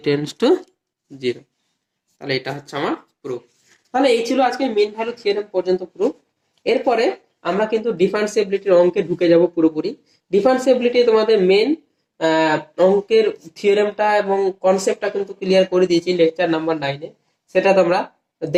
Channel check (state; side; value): identical; both; correlation 1.00